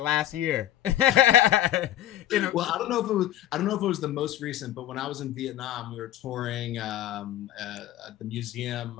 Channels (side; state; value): right; quieter; 13.0 dB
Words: last year. Well, I don't know if it was the most recent, but when I was in Vietnam, we were touring the museum